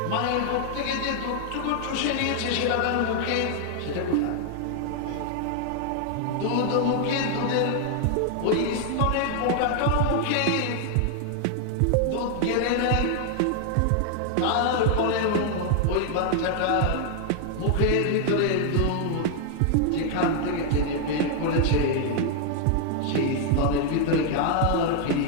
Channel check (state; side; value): different; both; correlation 0.00